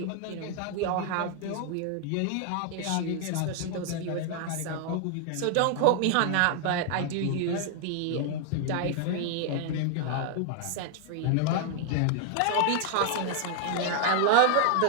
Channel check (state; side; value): different; both; correlation 0.00